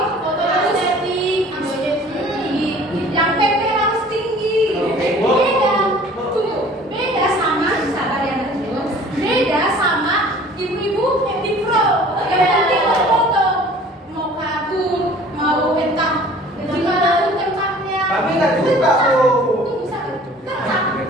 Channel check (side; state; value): both; normal; correlation 0.49